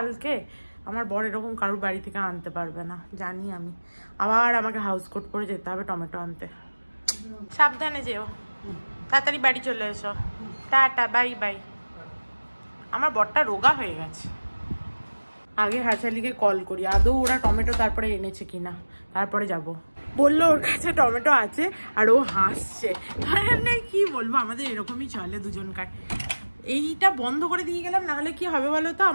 আমার বর এরকম কারোর বাড়ি থেকে আনতে পারবে না জানি আমি, আবার আমাকে হাউস কোট করে যেতে হবে টমেটো আনতে। সাবধানে যেও, তাড়াতাড়ি বাড়ি চলে এসো, টাটা, বাই বাই। আমার বরটা রোগা হয়ে গেছে। আগে হারশালিকে কল করি, আদৌ ওরা টমেটো তারপরে এনেছে কিনা, তারপরে যাব। বললো ওর কাছে টমেটো আছে আর ও হাসছে। কি বলবো, আমাদের এরকমই চলে দুজনকার। এইটা বন্ধ করে দিয়ে গেলাম, নাহলে কি হবে বলো তো,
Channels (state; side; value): inverted; both; correlation -1.00